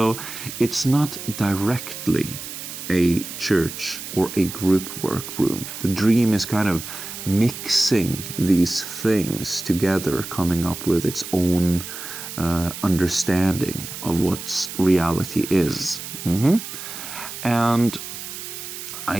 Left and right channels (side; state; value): right; noise; hiss, 9 dB below the sound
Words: it's not directly a church or a group work room. The dream is kind of mixing these things together, coming up with its own understanding of what reality is. And